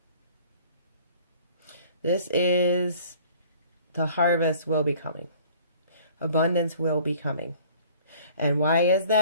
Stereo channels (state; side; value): inverted; both; correlation -0.52